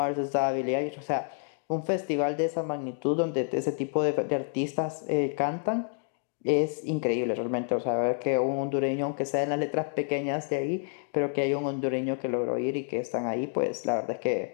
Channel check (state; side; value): silent; right; 59 dB below the other